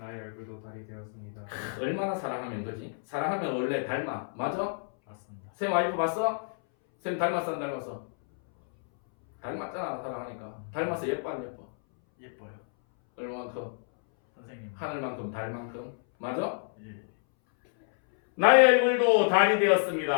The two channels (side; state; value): right; silent; 58 dB below the other